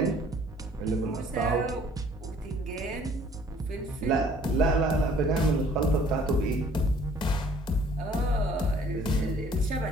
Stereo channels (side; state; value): both; normal; correlation 0.57